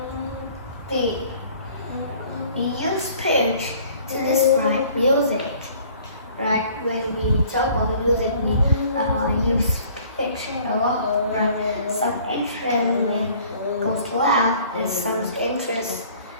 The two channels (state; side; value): inverted; both; correlation -0.54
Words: We use pitch to describe music, right? When we talk about music, we use pitch a lot, right? Some instrument goes loud, and some instruments